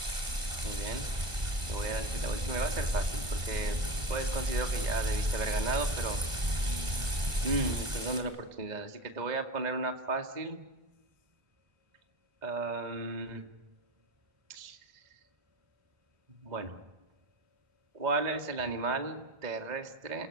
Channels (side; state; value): left; late; 1.5 ms